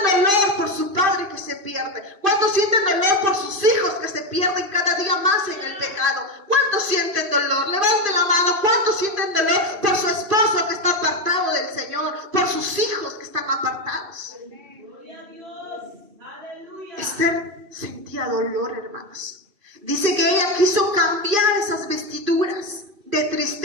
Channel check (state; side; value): late; left; 2.5 ms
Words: dolor por su padre que se pierde? ¿Cuántos sienten dolor por sus hijos que se pierden cada día más en el pecado? ¿Cuántos sienten dolor? Levante la mano. ¿Cuántos sienten dolor por su esposo que está apartado del Señor? Por sus hijos que están apartados. Gloria a Dios. Aleluya. Esther sentía dolor, hermanos. Dice que ella quiso cambiar esas vestiduras de